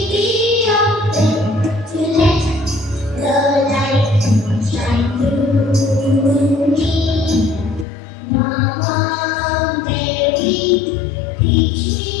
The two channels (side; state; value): right; drops out; at 7.9 s